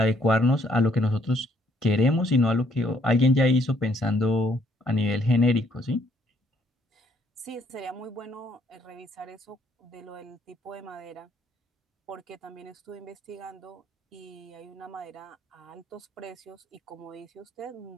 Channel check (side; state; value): both; normal; correlation 0.66